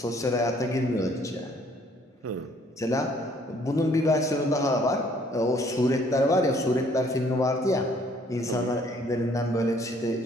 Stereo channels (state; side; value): normal; both; correlation 0.62